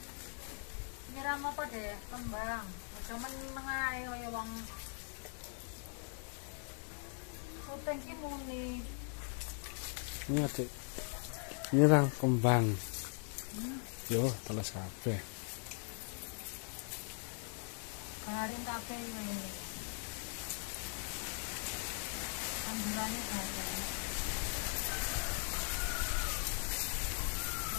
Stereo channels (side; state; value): right; silent; 51 dB below the other